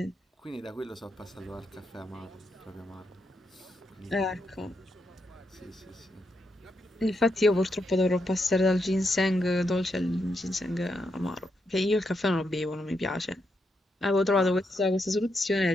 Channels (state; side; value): normal; both; correlation 0.82